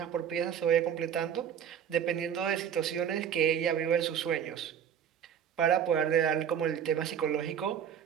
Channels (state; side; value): quieter; left; 8.6 dB